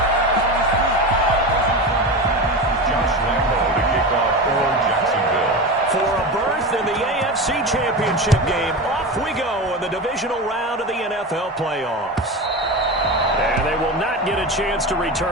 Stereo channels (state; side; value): normal; both; correlation 0.24